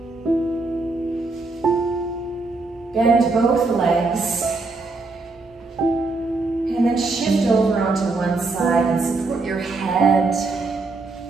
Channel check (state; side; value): quieter; left; 3.6 dB